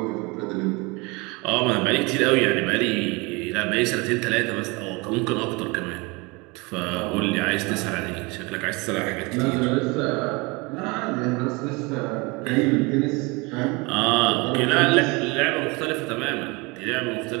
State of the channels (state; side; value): quieter; left; 26.6 dB